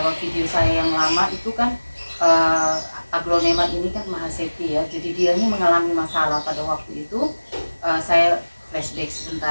video saya yang lama itu kan aglonema ini kan Mahasepi ya. Jadi dia ini mengalami masalah pada waktu itu. Saya flashback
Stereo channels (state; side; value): inverted; both; correlation -1.00